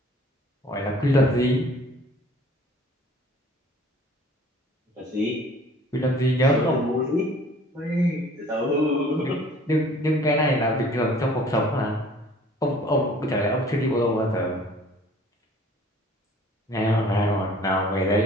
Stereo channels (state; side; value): normal; both; correlation 0.51